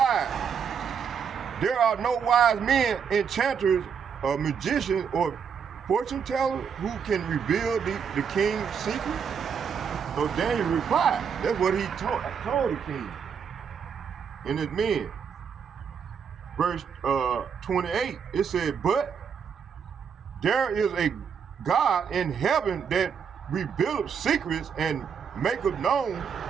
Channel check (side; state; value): left; quieter; 6.9 dB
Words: there are no wise men, enchanters, or magicians, or fortune tellers who can reveal the king's secret? So Daniel replied. That's what he told the king and his men. Verse 28, it said, but there is a God in heaven that revealeth secrets and maketh known